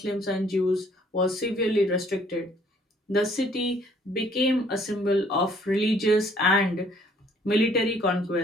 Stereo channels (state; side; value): normal; both; correlation 0.61